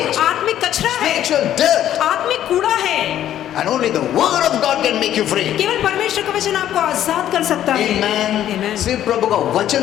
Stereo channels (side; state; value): right; quieter; 11.5 dB